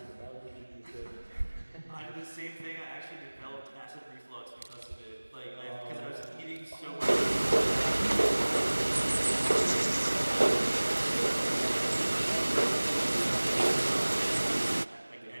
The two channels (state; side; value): inverted; both; correlation -1.00